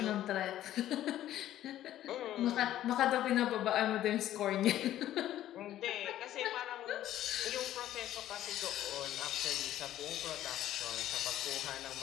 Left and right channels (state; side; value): quieter; right; 12.9 dB